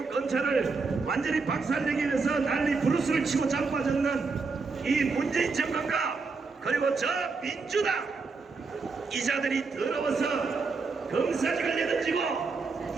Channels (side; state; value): left; quieter; 4.4 dB